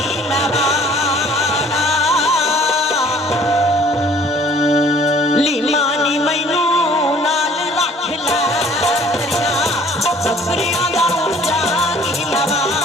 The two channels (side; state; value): both; normal; correlation 0.55